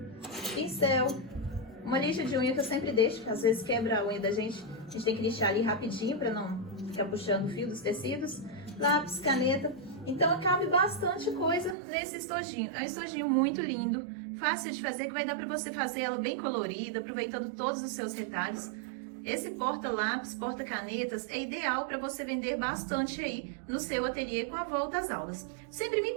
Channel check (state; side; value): drops out; left; at 11.8 s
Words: pincel, uma lixa de unha que eu sempre deixo, que às vezes quebra a unha da gente, a gente tem que lixar ali rapidinho para não ficar puxando o fio dos tecidos, lápis, caneta. Então, cabe bastante coisa nesse estojinho. É um estojinho muito lindo, fácil de fazer, que vai dar para você fazer ela bem colorida, aproveitando todos os seus retalhos. esse porta-lápis, porta-canetas é ideal para você vender bastante aí no seu ateliê com a volta às aulas. Sempre me